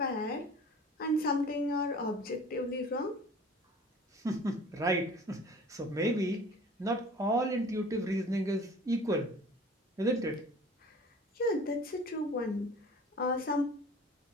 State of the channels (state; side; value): normal; both; correlation 0.45